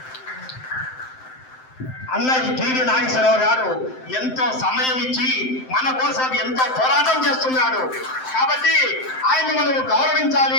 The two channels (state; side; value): late; right; 7.7 ms